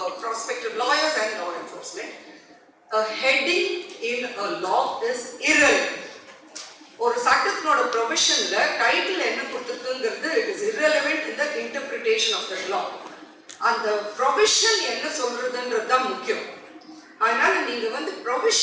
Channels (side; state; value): both; identical; correlation 1.00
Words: prospective lawyers and law enforcement. A heading in a law is irrelevant. ஒரு சட்டத்தினோட ப்ரொவிஷன்ல title என்ன கொடுத்திருக்குங்கிறது it is irrelevant in the interpretation of the law. அந்த provision என்ன சொல்றதுன்றது தான் முக்கியம். அதனால நீங்க வந்து